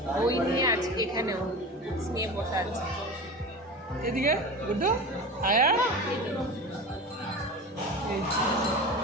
বই নিয়ে আজকে এখানেও নিয়ে বসে আছে। এদিকে গুড্ডু আয়া, এই যে।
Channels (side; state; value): both; normal; correlation 0.30